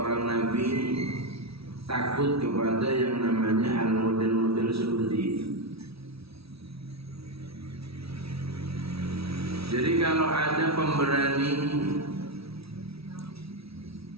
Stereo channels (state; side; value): late; left; 0.76 ms